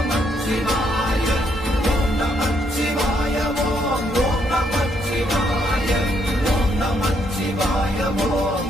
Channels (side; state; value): both; normal; correlation 0.74